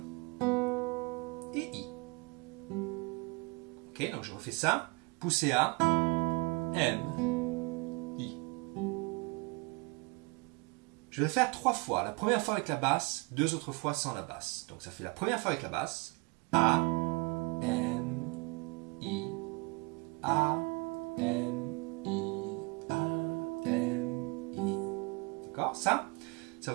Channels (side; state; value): left; quieter; 28.7 dB